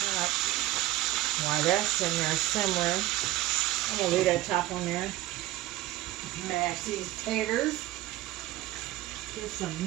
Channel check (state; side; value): quieter; left; 16.1 dB